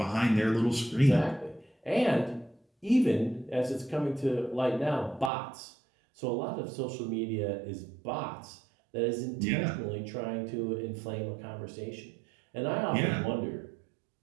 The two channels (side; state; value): left; drops out; at 5.3 s